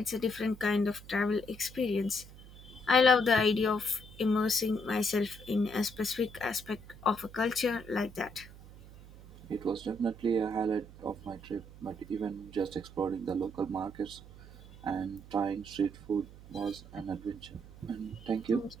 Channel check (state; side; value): noise; right; hum, 18 dB below the sound